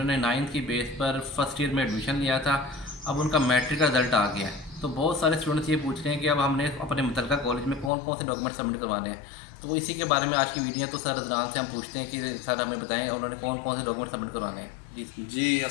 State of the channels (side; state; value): right; drops out; at 7.9 s